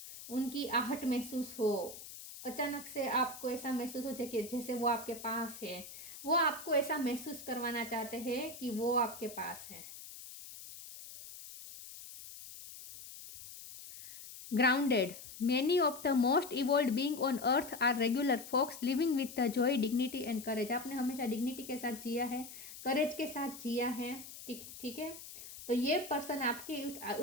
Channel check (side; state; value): left; noise; hiss, 13 dB below the sound